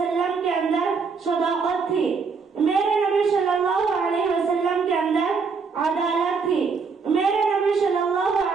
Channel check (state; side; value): quieter; left; 5.1 dB